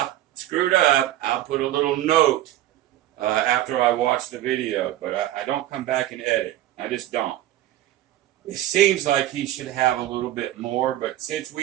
screwed up, I'll put a little note after I watch the video. But I don't come back and edit. I just don't. It seems like he should have a little bit more, but since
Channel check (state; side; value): quieter; left; 14.0 dB